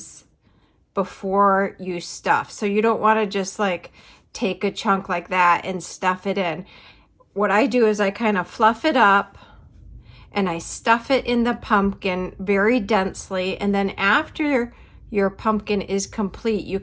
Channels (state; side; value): identical; both; correlation 1.00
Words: before you stuff. So you don't want to just like take a chunk like that and stuff it in. What I do is I kind of fluff it up and I stuff it in the pumpkin very densely, and then after your pumpkin is complete, you